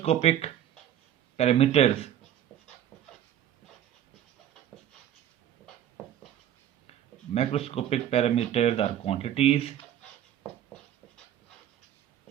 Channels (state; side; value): quieter; left; 11.0 dB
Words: parameters. Macroscopic parameters are quantities.